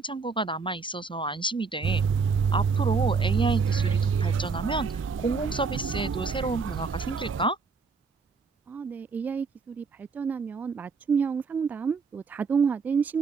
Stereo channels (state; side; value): quieter; left; 4.8 dB